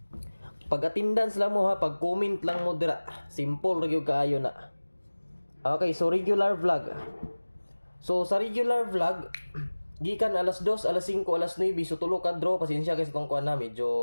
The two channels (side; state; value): both; inverted; correlation -1.00